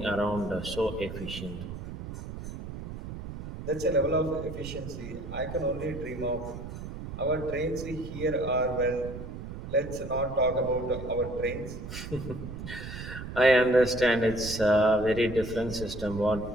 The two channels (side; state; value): right; noise; rumble, 9 dB below the sound